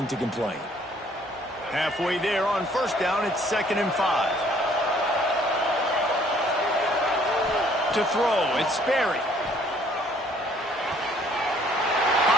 to complain. Halfway there on first down, it's 2nd and 5. To throw, it's Sperry.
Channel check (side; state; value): both; normal; correlation 0.61